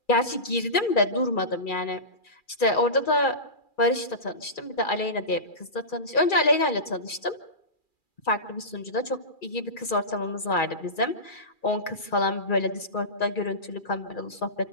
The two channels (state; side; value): late; right; 2.4 ms